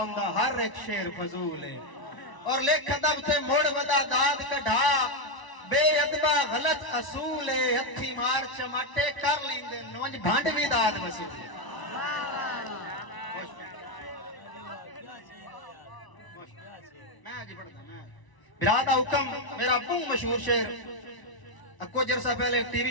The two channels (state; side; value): late; right; 1.0 ms